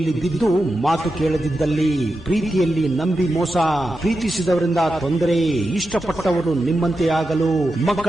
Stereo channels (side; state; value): both; normal; correlation 0.90